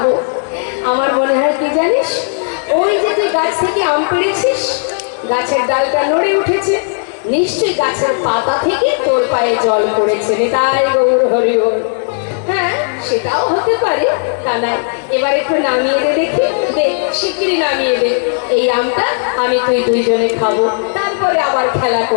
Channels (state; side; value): silent; right; digital silence